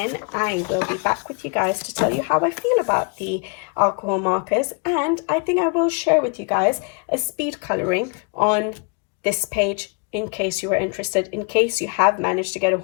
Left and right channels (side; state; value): right; quieter; 35.5 dB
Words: I will be back with you guys to tell you how I feel about the alcohol markers. And I think I will share with you guys a speed coloring on this page, in case you were interested, in case you have managed to get a